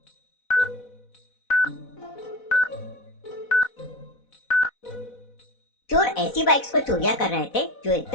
चोर ऐसी बाइक्स को चोरियां कर रहे थे जो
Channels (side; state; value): right; late; 4.0 ms